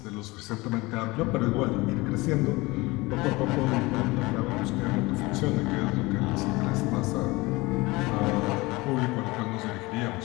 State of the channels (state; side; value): quieter; right; 22.5 dB